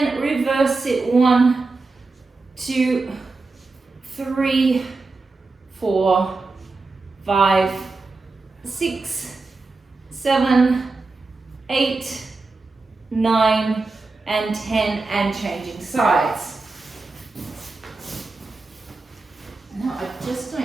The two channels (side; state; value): left; quieter; 3.7 dB